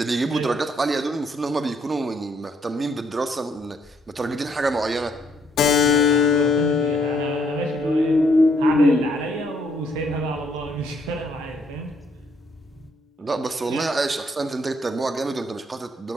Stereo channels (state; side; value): normal; both; correlation 0.69